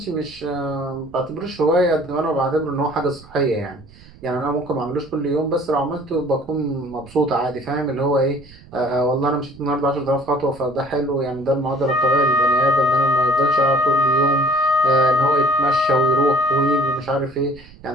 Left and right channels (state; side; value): noise; right; rumble, 22 dB below the sound